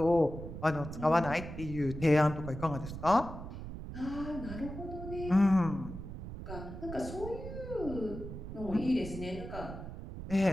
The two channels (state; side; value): noise; right; rumble, 9 dB below the sound